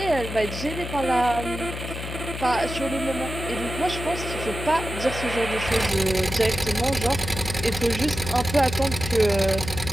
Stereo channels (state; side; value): noise; left; hum, 7 dB below the sound